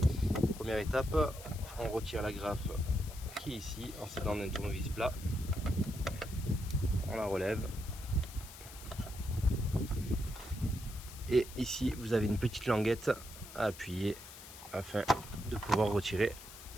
Première étape, on retire la graffe qui est ici en s'aidant d'un tournevis plat. On la relève. Et ici vous avez une petite languette à appuyer afin de pouvoir retirer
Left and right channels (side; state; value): left; noise; hiss, 15 dB below the sound